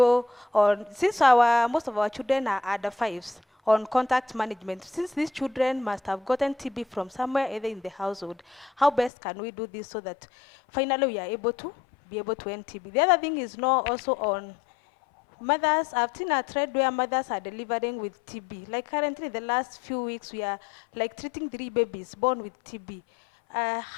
on, since most of our children are under 5s, on contact management, since these children must have gotten TB from somewhere, either in the household, how best can we do this so that finally we are able to end TB? The other thing is now also on mothers, I've seen a trend where mothers are delivering with TB. Like currently, the last few weeks, we are like treating 3 babies born with TB.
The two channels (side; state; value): right; drops out; at 9.1 s